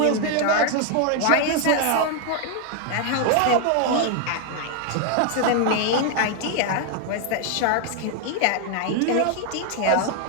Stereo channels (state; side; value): different; both; correlation 0.00